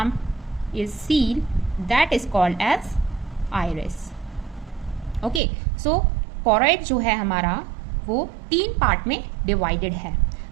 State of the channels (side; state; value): left; drops out; at 5.4 s